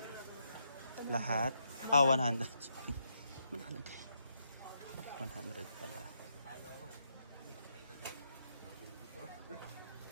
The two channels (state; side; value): inverted; both; correlation -0.79